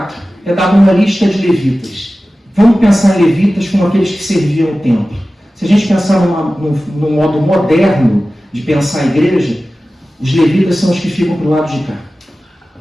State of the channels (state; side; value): normal; both; correlation 0.96